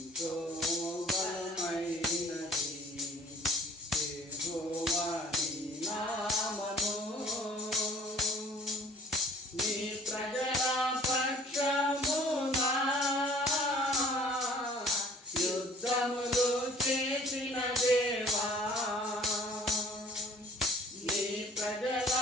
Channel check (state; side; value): normal; both; correlation 0.52